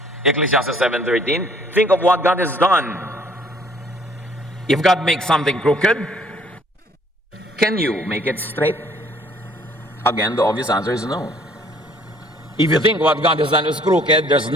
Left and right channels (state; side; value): normal; both; correlation 0.60